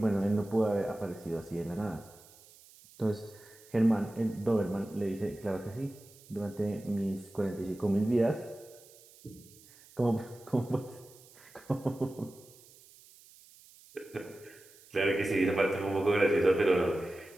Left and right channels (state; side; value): noise; right; hiss, 24 dB below the sound